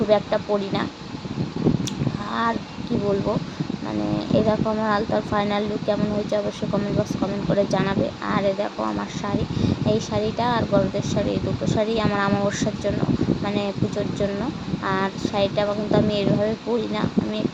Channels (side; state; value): both; identical; correlation 1.00